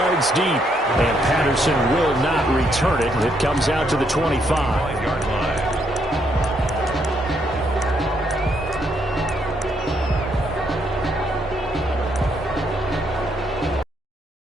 deep, and Patterson will not return it. It comes out to the 25-yard line.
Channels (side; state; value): both; normal; correlation 0.74